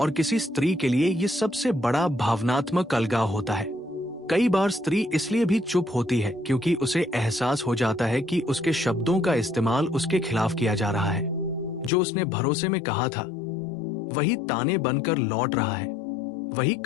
और किसी स्त्री के लिए ये सबसे बड़ा भावनात्मक अलगाव होता है। कई बार स्त्री इसलिए भी चुप होती है क्योंकि उसे एहसास हो जाता है कि उसके शब्दों का इस्तेमाल उसके खिलाफ किया जा रहा है। जो उसने भरोसे में कहा था, वही ताने बनकर लौट रहा है, वही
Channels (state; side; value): drops out; right; at 11.9 s